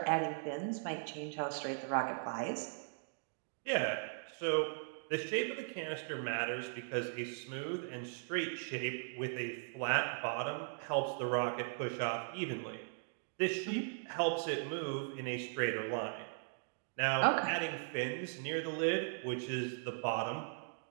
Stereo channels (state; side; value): silent; left; digital silence